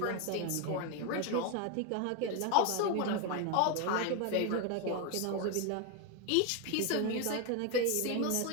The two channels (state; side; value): different; both; correlation 0.01